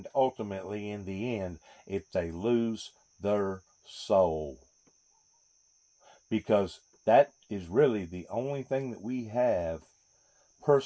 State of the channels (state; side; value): identical; both; correlation 1.00